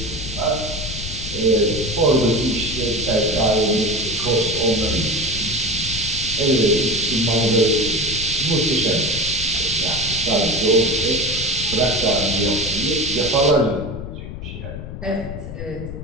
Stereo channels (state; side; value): noise; left; rumble, 9 dB below the sound